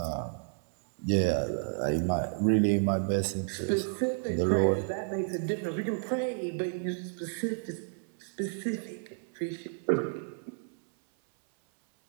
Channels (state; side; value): silent; left; 57 dB below the other